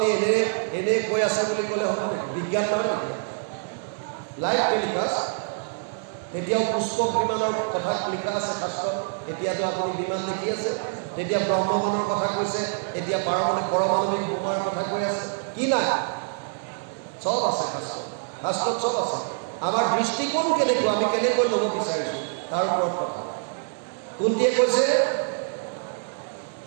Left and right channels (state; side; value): silent; left; 61 dB below the other